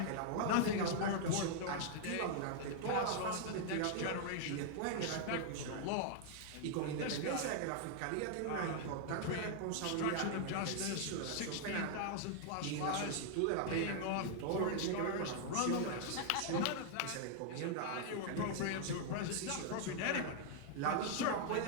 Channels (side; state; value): both; different; correlation -0.01